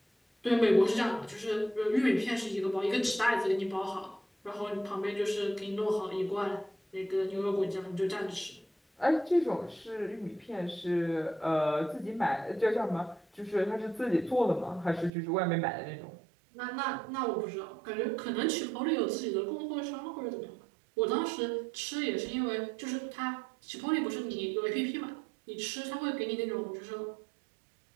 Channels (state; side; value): drops out; left; at 15.1 s